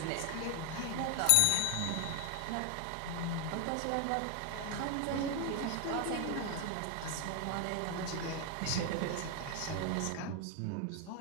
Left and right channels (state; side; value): different; both; correlation 0.01